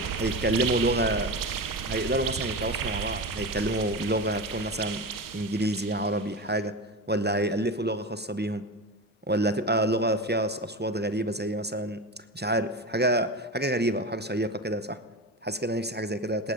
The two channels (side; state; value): both; normal; correlation 0.24